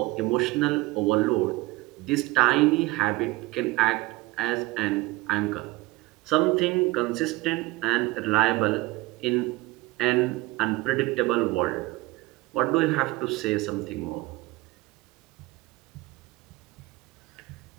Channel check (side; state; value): left; quieter; 21.1 dB